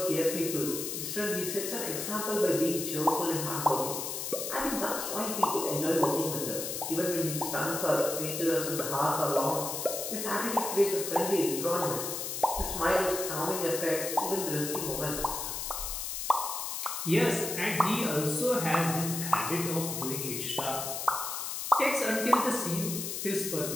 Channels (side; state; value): left; noise; hiss, 4 dB below the sound